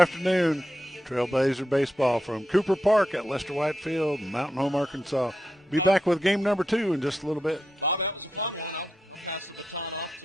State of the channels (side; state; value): both; normal; correlation 0.86